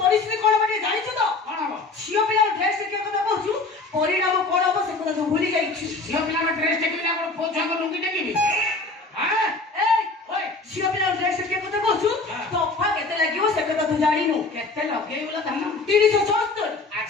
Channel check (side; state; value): right; quieter; 3.6 dB